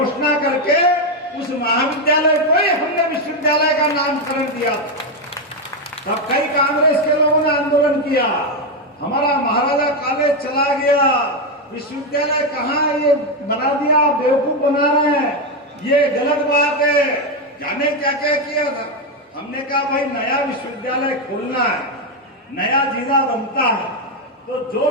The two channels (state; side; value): normal; both; correlation 0.06